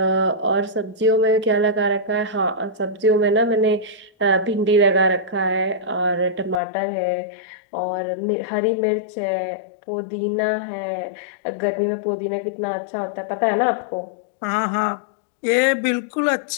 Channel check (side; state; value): right; drops out; at 6.6 s